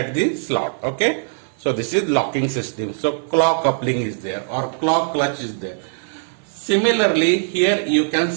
the slot. Okay. So this is locking system. So clock coupling is there or clock clutch is there. Similarly, here you can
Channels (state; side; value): silent; left; 57 dB below the other